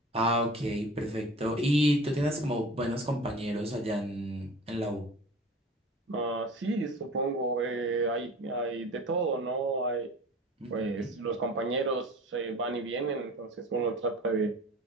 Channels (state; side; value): normal; both; correlation 0.39